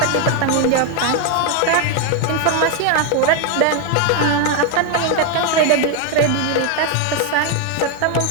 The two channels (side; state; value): both; different; correlation 0.01